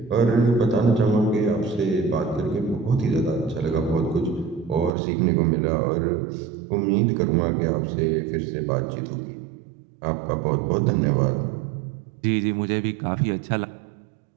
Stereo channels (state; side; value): drops out; left; at 5.0 s